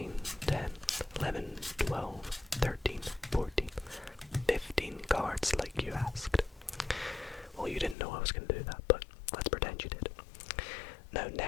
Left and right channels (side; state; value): right; drops out; at 8.0 s